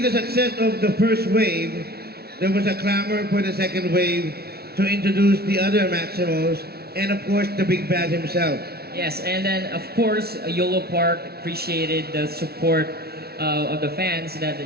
the success of the first wave, there was a clamor for the second wave to introduce the other Maximals and of course the Big Bad himself. Yes, and then of course Yolopark appreciated the support of the fans that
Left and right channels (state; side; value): late; left; 0.45 ms